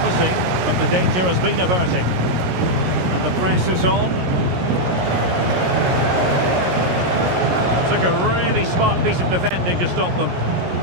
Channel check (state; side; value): late; left; 17 ms